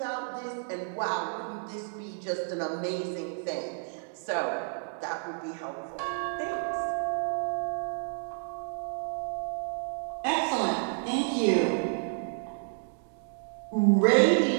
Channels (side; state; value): left; silent; 58 dB below the other